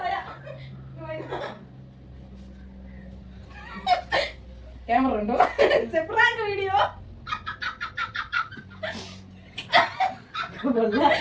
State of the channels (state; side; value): identical; both; correlation 1.00